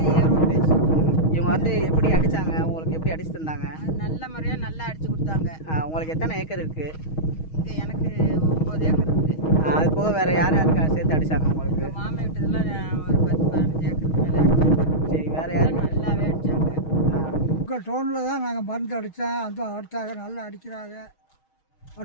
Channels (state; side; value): late; right; 6.3 ms